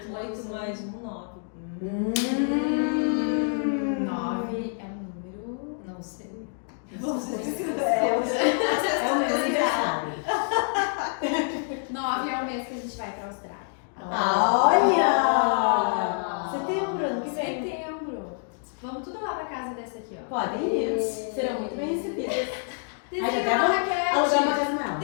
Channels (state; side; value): silent; right; 60 dB below the other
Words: mais 1, 9. 9 é um número. Não sei. É o meu aniversário. 9 é o mês que a gente vai pra Austrália. Olha! Setembro, ano que vem. Setembro. Vamos tudo lá pra casa dessa aqui, ó. Podem ir, serão muito bem recebidas. Desenha uma raquete. Alugar uma casa nela.